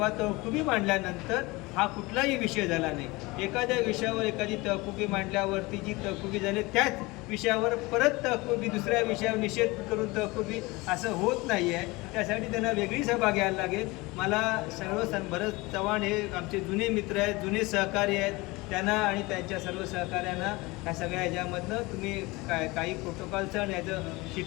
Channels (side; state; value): right; quieter; 23.1 dB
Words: तहकुबी मांडल्यानंतर हा कुठलाही विषय झाला नाही. एखाद्या विषयावर एखादी तहकुबी मांडल्यावरती जी तहकुबी झाली त्याच विषयावर परत तहकुबी दुसऱ्या विषयावर निषेध करून तहकुबी असं होत नाही आहे. त्यासाठी त्यांना वेगळी सभा घ्यायला लागेल. मला भरत चव्हाण हे आमचे जुने मित्र आहेत, जुने सहकारी आहेत. त्यांना आणि त्यांच्या सर्व सहकाऱ्यांना ह्या सगळ्या ह्याच्यामधनं तुम्ही काही प्रोटोकॉलचं आणि